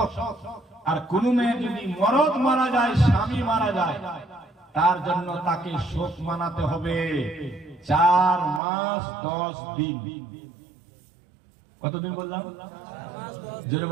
আর কোন মেয়ে যদি মরদ মারা যায়, স্বামী মারা যায়, তার জন্য তাকে শোক মানাতে হবে 4 মাস 10 দিন। কতদিন বললাম? জোরে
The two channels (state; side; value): drops out; left; at 8.6 s